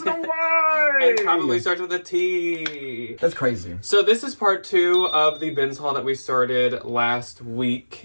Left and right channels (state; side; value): inverted; both; correlation -1.00